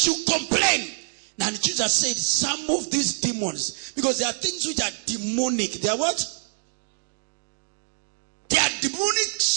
you complain. And Jesus said, some of these demons, because there are things which are demonic. They are what? They are demonic,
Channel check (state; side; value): silent; left; digital silence